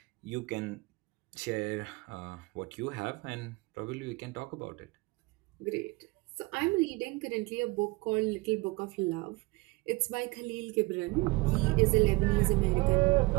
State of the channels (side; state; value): left; quieter; 24.3 dB